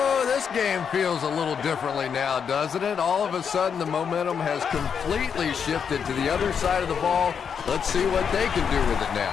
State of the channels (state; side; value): quieter; right; 7.0 dB